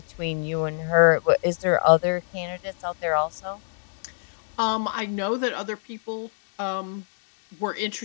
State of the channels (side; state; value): right; silent; digital silence